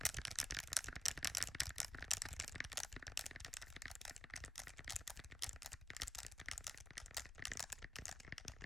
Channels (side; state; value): both; normal; correlation 0.93